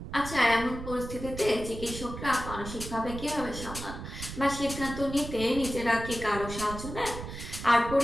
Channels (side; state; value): right; noise; rumble, 9 dB below the sound